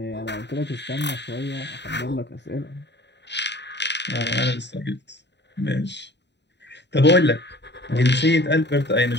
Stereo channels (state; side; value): late; right; 0.51 ms